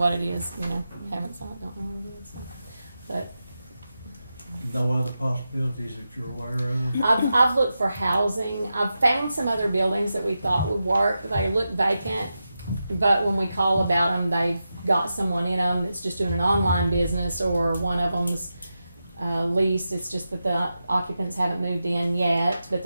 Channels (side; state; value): both; inverted; correlation -0.90